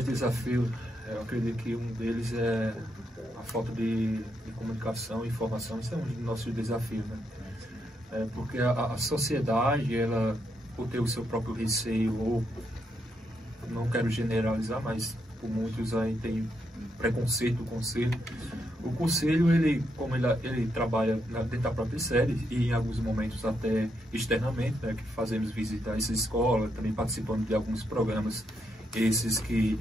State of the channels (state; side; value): normal; both; correlation 0.79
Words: desafios, eu acredito que um deles é a falta de comunicação e informação. Isso é um dos nossos desafios, né? Porque a sociedade, ela, por ter o seu próprio receio, ou não quero generalizar, mas por muitos aí tem preconceito do conselho. O conselho, como ele trabalha dentro da própria sede e em alguns momentos até externamente, né, que fazemos visitar essa escola, também participando de alguns programas, esses que